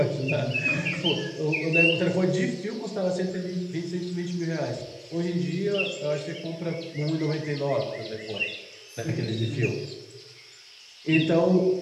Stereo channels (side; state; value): both; identical; correlation 1.00